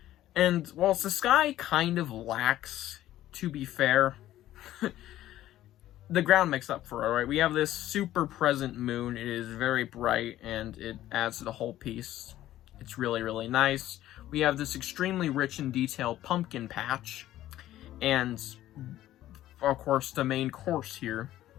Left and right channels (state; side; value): quieter; right; 13.8 dB